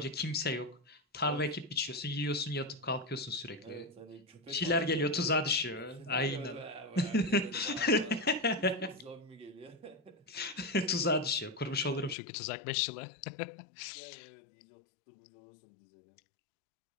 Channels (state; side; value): drops out; right; at 12.2 s